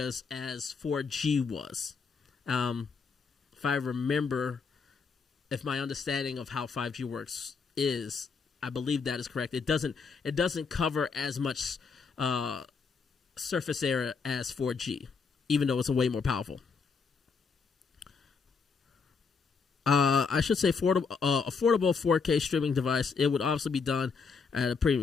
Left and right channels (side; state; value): right; quieter; 5.2 dB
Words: as 4G was. If I remember, if my understanding of how 5G works is, I believe that is correct. It doesn't cover as much surface area as 4G, even though it's a way more powerful. I should say affordable 4K streaming device. It would obviously be done at a